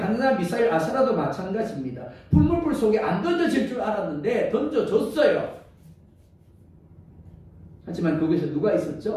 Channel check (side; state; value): both; identical; correlation 1.00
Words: 미사엘 아사라도 마찬가지입니다. 풀물불 속에 안 던져질 줄 알았는데 던져졌어요. 하지만 거기서 누가